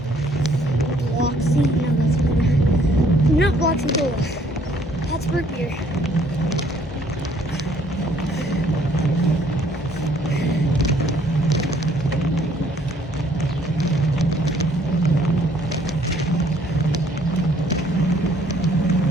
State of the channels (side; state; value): both; normal; correlation 0.62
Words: Bloxy? No, that's good. Not Bloxy Cola. That's root beer.